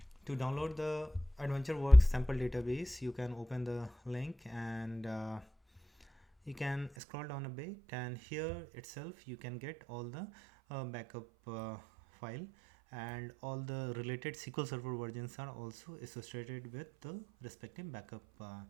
To download the AdventureWorks sample database, you can open the link and you can scroll down a bit, and here itself you can get all the backup file, and all the related SQL Server versions are also associated with the respective backup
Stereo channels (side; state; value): left; drops out; at 6.9 s